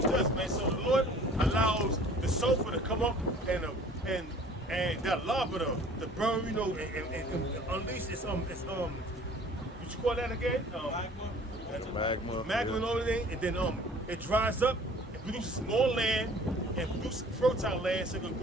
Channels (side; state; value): both; normal; correlation 0.50